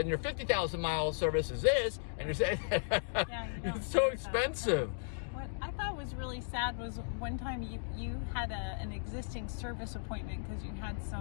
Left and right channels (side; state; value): right; silent; digital silence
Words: 50,000 mile service is this, and you're saying, it's so expensive. What I thought was really sad was one time you had an existing service appointment because you had